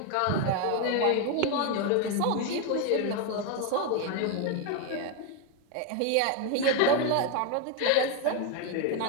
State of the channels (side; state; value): both; different; correlation 0.01